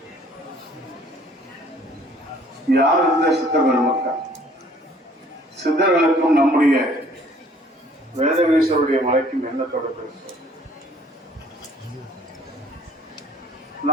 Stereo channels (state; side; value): normal; both; correlation 0.57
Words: யார் இந்த சித்தர் பெருமக்கள்? சித்தர்களுக்கும் நம்முடைய வேதகிரீஸ்வருடைய மலைக்கும் என்ன தொடர்பு?